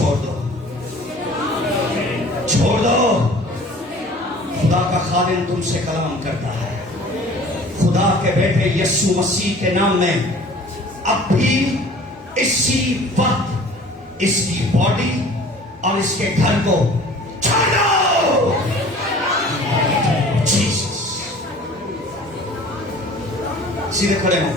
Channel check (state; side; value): normal; both; correlation 0.47